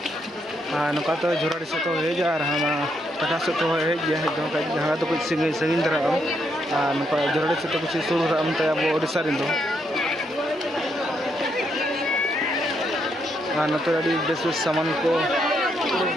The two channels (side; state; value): both; normal; correlation 0.77